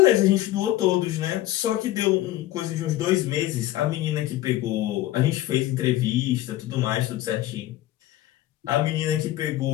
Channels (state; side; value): quieter; right; 15.0 dB